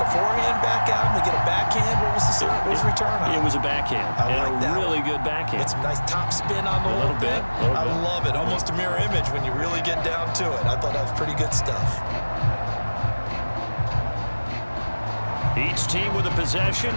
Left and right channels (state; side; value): inverted; both; correlation -1.00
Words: a forehand back out. They get a backhand. What was the return on? It was a backhand. I like that. Really good backhand. Get some nice top spin on the whole thing. I love it. Almost a mirror image when you really get down to it. I thought that was pretty good stuff. Each team with a possession,